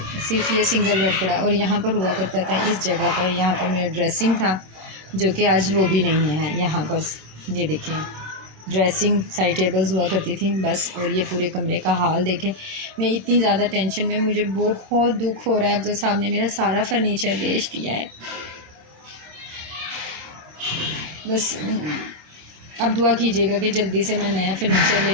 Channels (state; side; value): late; left; 26 ms